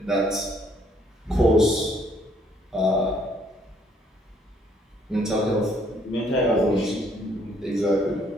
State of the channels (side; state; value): both; normal; correlation 0.66